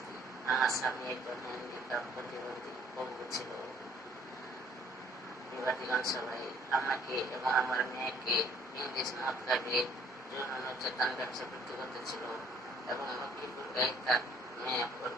আমার স্বামী একজন হ্যান্ডিক্যাপ প্রতিবন্ধী পঙ্গু ছিল। বিবাদীগণ সবাই আমাকে এবং আমার মেয়েকে ইংলিশ মদ খাইয়ে যৌন নির্যাতন ব্যবসা বৃদ্ধি করতেছিল এবং লক্ষ্মীপুর গায়ে তার মেয়ে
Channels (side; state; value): both; normal; correlation 0.60